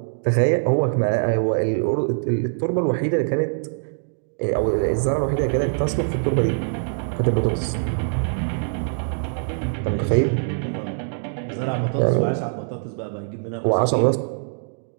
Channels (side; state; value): left; silent; digital silence